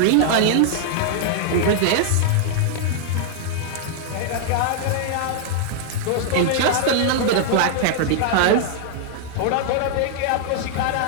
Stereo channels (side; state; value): both; different; correlation -0.01